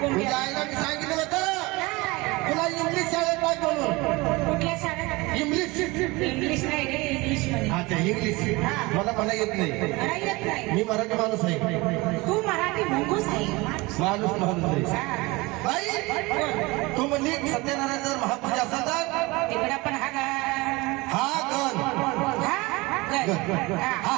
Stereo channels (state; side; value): quieter; left; 23.3 dB